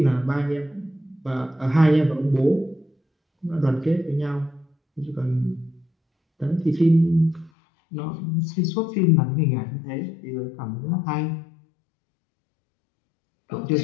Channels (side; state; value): right; drops out; at 7.5 s